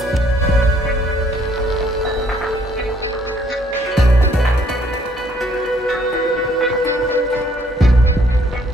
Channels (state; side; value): normal; both; correlation 0.64